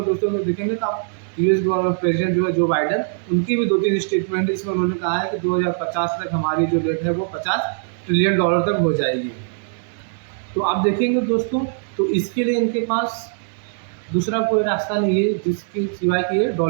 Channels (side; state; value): left; silent; digital silence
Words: दोस्तों में देखेंगे तो आप यूएस गवर्नमेंट प्रेसिडेंट जो है जो बाइडन, उनकी भी 2-3 स्टेटमेंट इसमें उन्होंने कहा है कि 2050 तक हमारी जो डेट है वो 50 ट्रिलियन डॉलर तक हो जाएगी। तो आप देखेंगे दोस्तों, तो इसके लिए इनके पास दूसरा कोई रास्ता नहीं है जिसके सिवाय कि ये